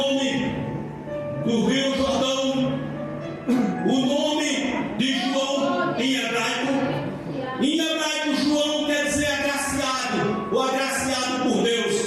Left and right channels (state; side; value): identical; both; correlation 1.00